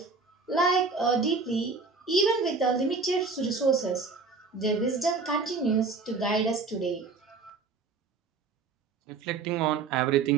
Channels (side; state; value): left; quieter; 4.3 dB